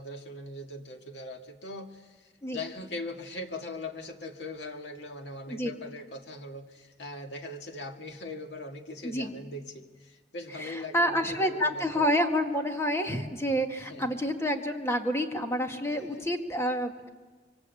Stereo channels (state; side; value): normal; both; correlation 0.40